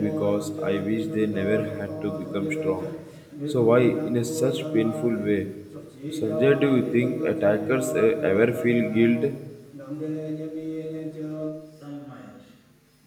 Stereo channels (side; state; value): both; identical; correlation 1.00